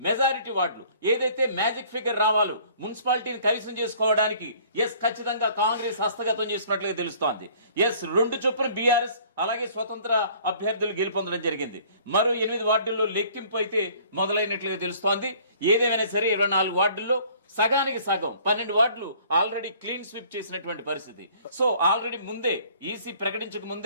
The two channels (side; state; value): both; inverted; correlation -0.54